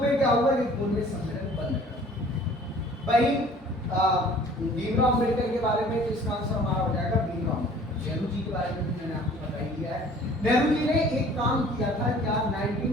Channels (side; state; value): both; normal; correlation 0.51